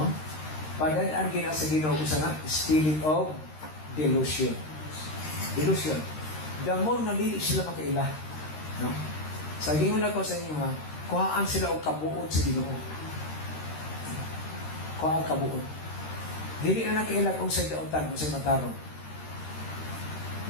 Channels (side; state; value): right; late; 13 ms